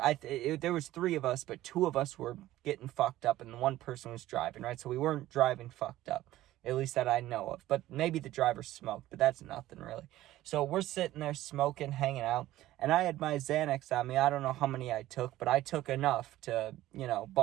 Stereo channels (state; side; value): quieter; left; 15.1 dB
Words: was 3 of us, but 2 of us were getting fucked up, and one person was driving, right? So we weren't driving fucked up, at least that I know of. But maybe the driver smoked, but that's nothing really. So we're sitting there smoking, hanging out, and I had my Xanax on me. I don't know how many I took, but I took enough to,